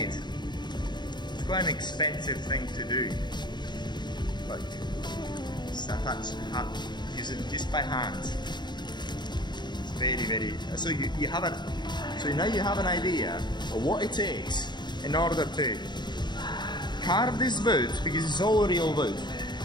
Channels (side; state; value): right; late; 0.21 ms